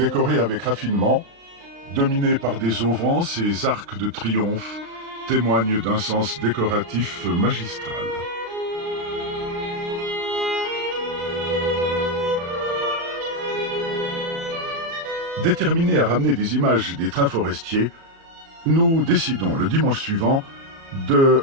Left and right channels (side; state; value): left; late; 36 ms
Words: avec raffinement, dominé par des auvents, ces arcs de triomphe témoignent d'un sens décoratif magistral. Déterminés à ramener des images des trains forestiers, nous décidons le dimanche suivant de